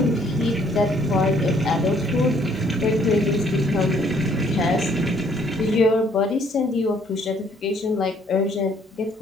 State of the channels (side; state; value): both; normal; correlation 0.64